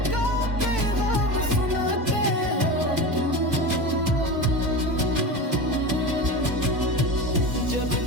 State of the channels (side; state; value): left; late; 2.2 ms